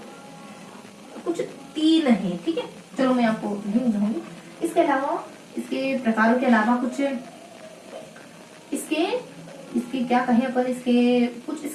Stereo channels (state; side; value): identical; both; correlation 1.00